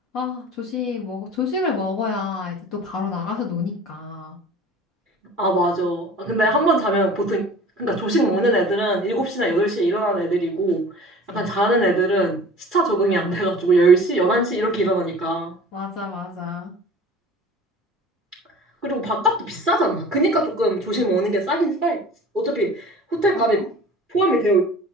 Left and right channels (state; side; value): normal; both; correlation 0.43